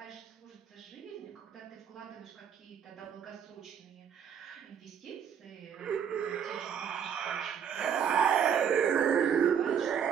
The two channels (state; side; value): quieter; left; 8.1 dB